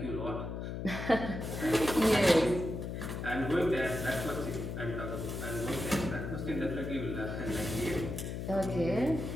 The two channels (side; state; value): left; noise; hum, 5 dB below the sound